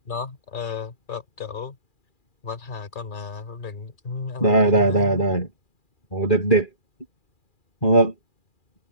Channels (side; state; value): right; late; 2.4 ms